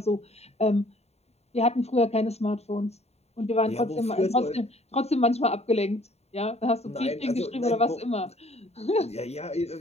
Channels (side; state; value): right; late; 0.31 ms